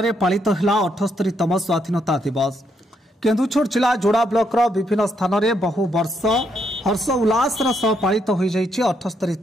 पालित है 78तम स्वाधीनता दिवस। केन्दुछर जिला जोड़ा ब्लॉक विभिन्न स्थान में बहु वर्ष हर्ष उल्लास सह पालित हो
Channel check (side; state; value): both; normal; correlation 0.76